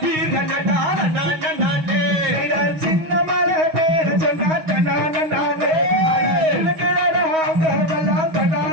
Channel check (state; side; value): late; left; 6.3 ms